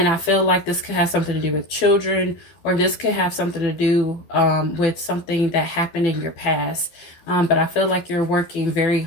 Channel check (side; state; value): right; late; 12 ms